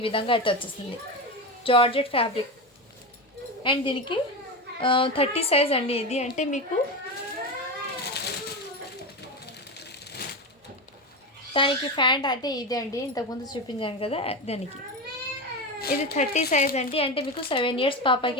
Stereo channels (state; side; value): normal; both; correlation 0.19